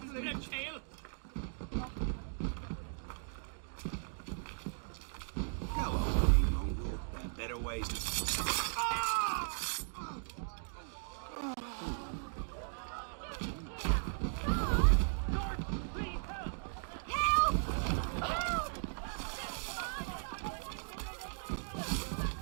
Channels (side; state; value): left; silent; digital silence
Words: tail! Go on, you mongrel. There are better ways to...